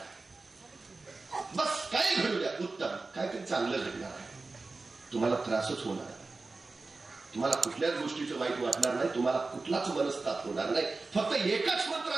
बस काय घडू द्या, उत्तम, काहीतरी चांगलं घडणार आहे. तुम्हाला त्रासच होणार आहे, तुम्हाला कुठल्याच गोष्टीचं वाईट वाटणार नाही, तुम्हाला कुठलाच मनस्ताप होणार नाही. फक्त एकच मंत्र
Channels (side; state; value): left; quieter; 3.6 dB